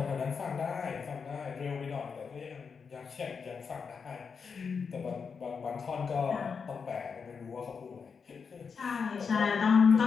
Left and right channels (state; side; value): quieter; right; 5.8 dB